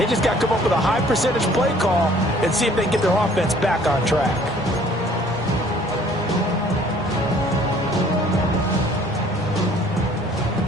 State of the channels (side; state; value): both; normal; correlation 0.56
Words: just got to come up with a high percentage play call and see if they can get their offense back on track.